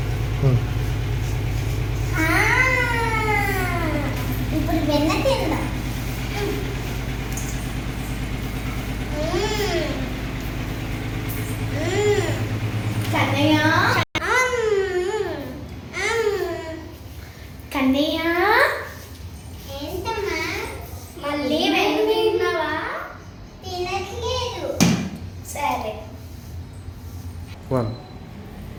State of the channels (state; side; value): identical; both; correlation 1.00